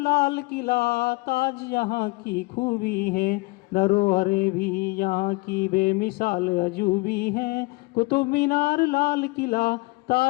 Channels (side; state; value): right; quieter; 25.0 dB